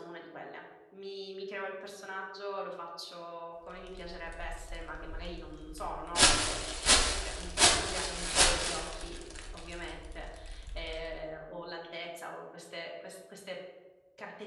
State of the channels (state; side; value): identical; both; correlation 1.00